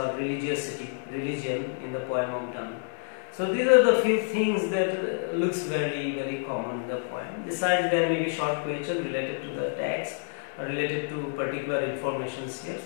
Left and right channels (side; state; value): right; silent; digital silence